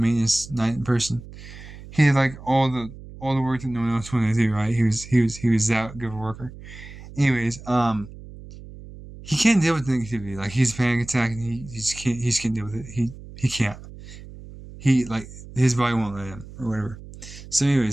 night person. He had like all the work that no one else wanted to do. Right? He was that good of a worker. Anyways, he can't deal with negativity. Like he's a panic attack, and he just can't deal with it. He can't. He like his body won't let him or whatever. So,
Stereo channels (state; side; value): noise; right; hum, 16 dB below the sound